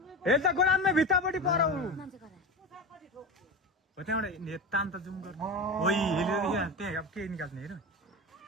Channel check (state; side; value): normal; both; correlation 0.24